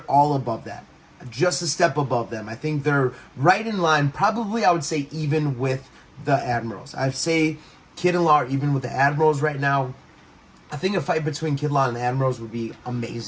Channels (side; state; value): both; identical; correlation 1.00